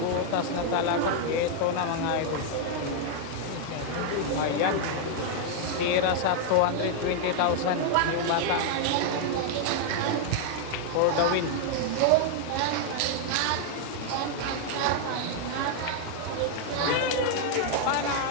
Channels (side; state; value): both; different; correlation 0.00